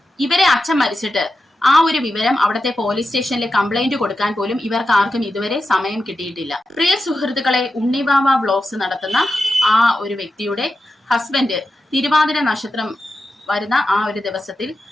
ഇവരെ അച്ഛൻ മരിച്ചിട്ട് ആ ഒരു വിവരം അവിടുത്തെ പോലീസ് സ്റ്റേഷനിൽ കംപ്ലൈന്റ് കൊടുക്കാൻ പോലും ഇവർക്ക് ആർക്കും ഇതുവരെ സമയം കിട്ടിയിട്ടില്ല. പ്രിയ സുഹൃത്തുക്കളെ, ഉണ്ണിവാവ വ്ലോഗ്സ് നടത്തുന്ന ആ ഒരു വ്യക്തിയുടെ ഹസ്ബൻഡ് തിരുവാതിര നക്ഷത്രം വരുന്ന ആ ഒരു ദിവസത്തിൽ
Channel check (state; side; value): normal; both; correlation 0.90